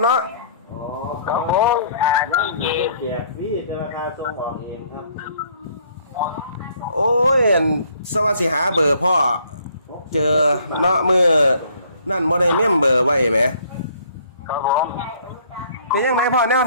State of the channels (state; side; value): inverted; both; correlation -0.61